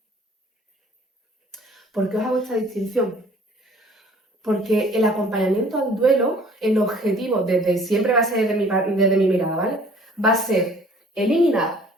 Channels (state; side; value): normal; both; correlation 0.53